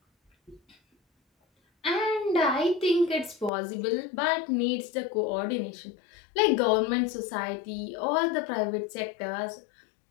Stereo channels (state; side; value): drops out; right; at 3.5 s